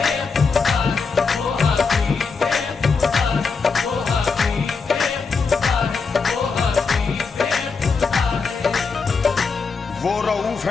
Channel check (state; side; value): quieter; right; 4.9 dB